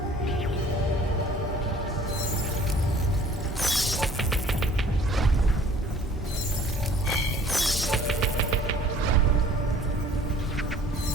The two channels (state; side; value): normal; both; correlation 0.53